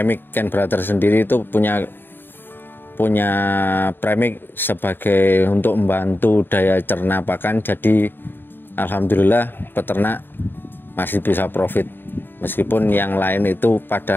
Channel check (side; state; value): right; late; 0.097 ms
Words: Ken Brother sendiri, itu punya premix sebagai untuk membantu daya cerna pakan. Jadi alhamdulillah peternak masih bisa profit meskipun yang lain itu